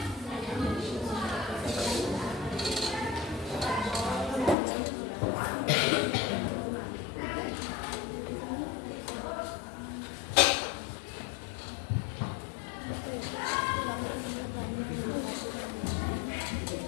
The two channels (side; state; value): right; drops out; at 4.5 s